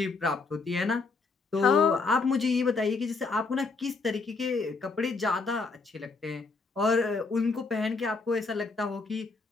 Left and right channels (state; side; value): quieter; right; 4.1 dB